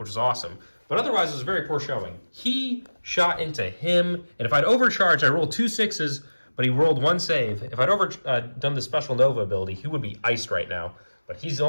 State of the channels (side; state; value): both; inverted; correlation -1.00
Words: was awesome, but otherwise it was a very poor showing. He shot into him, and if I'd overcharged, I rolled 2 6s, but he rolled 1 save. If I'd done the special Nova ability, he would be iced right now, but he's